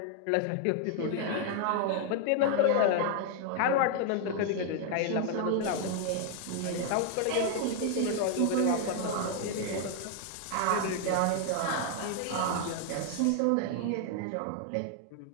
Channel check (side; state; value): both; different; correlation 0.00